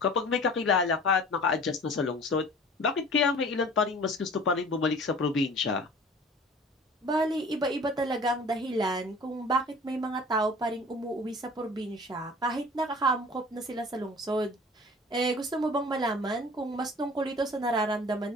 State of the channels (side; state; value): both; normal; correlation 0.45